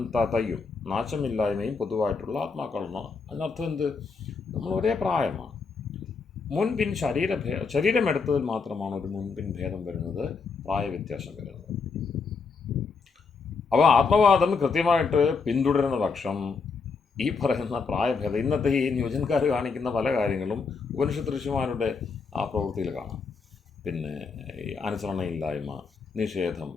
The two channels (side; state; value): right; quieter; 4.9 dB